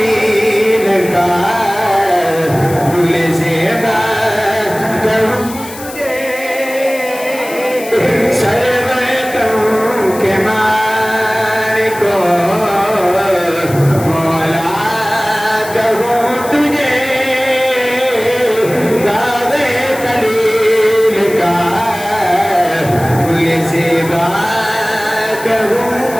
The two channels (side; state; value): left; noise; hiss, 14 dB below the sound